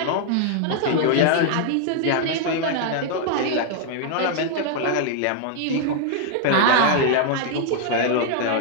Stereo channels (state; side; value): different; both; correlation 0.00